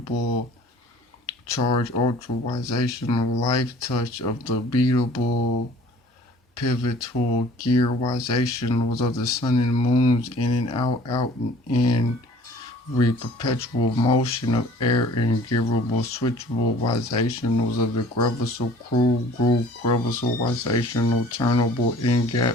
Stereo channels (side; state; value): both; normal; correlation 0.50